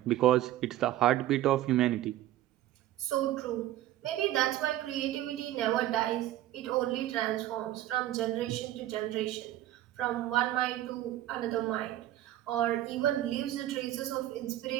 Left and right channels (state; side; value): quieter; left; 13.9 dB